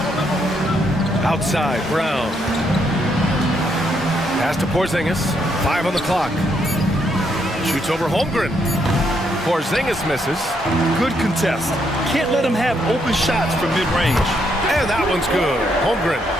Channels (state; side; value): normal; both; correlation 0.75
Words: Outside, Brown. Pass to Porzingis. 5 on the clock. Shoots over Holmgren. Porzingis misses. Good contest. Can't let him have open shots from mid-range. And that one's good. Holmgren.